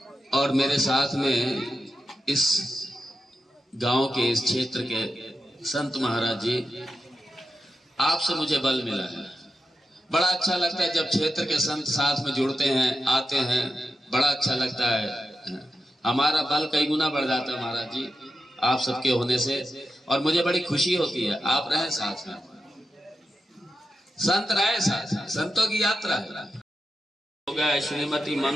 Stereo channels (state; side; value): normal; both; correlation 0.89